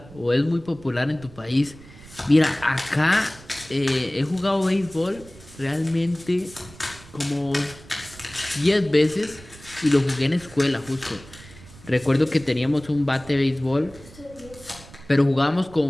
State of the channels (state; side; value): noise; right; rumble, 20 dB below the sound